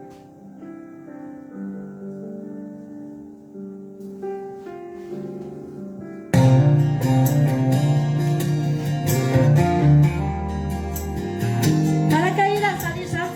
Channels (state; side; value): identical; both; correlation 1.00